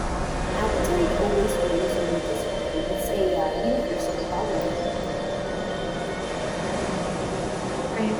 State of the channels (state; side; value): identical; both; correlation 1.00